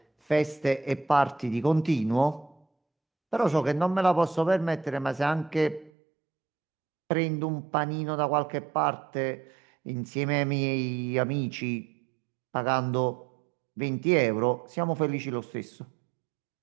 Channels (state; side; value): drops out; left; at 5.9 s